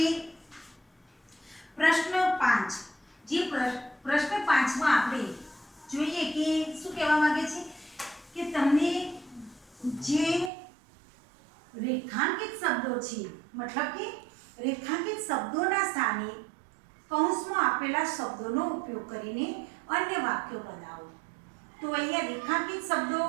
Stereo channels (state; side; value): drops out; left; at 10.5 s